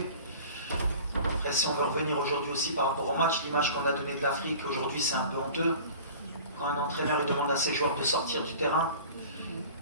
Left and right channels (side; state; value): both; inverted; correlation -0.42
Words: Après, si on veut revenir aujourd'hui aussi par rapport au match, l'image qu'on a donnée de l'Afrique aujourd'hui c'est un peu honteux. Quand un entraîneur il demande à ses joueurs de sortir du terrain,